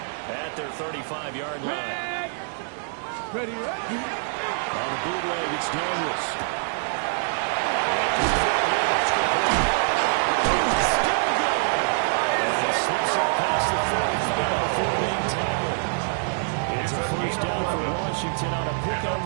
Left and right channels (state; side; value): silent; left; digital silence